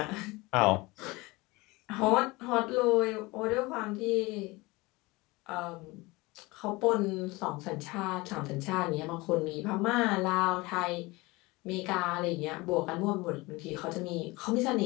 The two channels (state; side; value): quieter; right; 22.8 dB